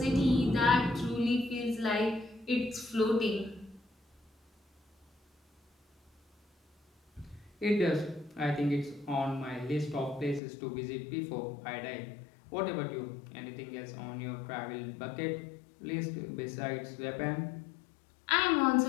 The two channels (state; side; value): drops out; right; at 10.4 s